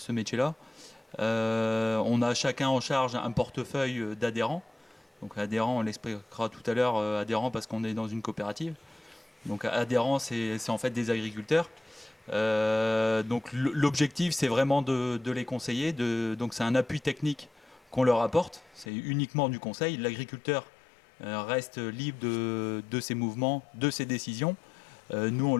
métier-là. On a chacun en charge un portefeuille d'adhérents. Donc adhérents, on l'expliquera tout à l'heure, adhérents parce qu'on est dans une coopérative. Donc adhérents, c'est en fait des agriculteurs. Donc l'objectif, c'est vraiment de les conseiller. Donc c'est un appui technique qu'on leur apporte. C'est uniquement du conseil. L'agriculteur reste libre de ses mouvements, de ses décisions. Nous, on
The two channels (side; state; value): right; drops out; at 18.9 s